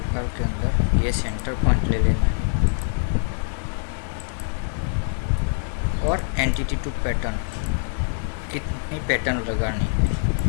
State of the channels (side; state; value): right; silent; digital silence